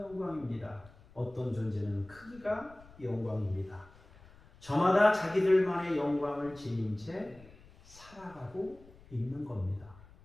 어떤 존재는 크기가 영광입니다. 저마다 자기들만의 영광을 지닌 채 살아가고 있는 겁니다.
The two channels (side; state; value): left; noise; rumble, 23 dB below the sound